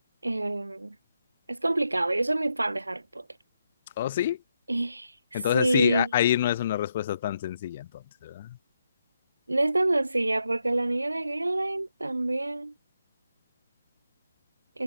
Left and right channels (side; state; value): both; inverted; correlation -0.82